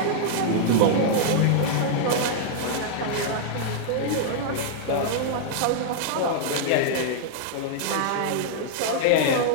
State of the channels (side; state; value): both; different; correlation -0.01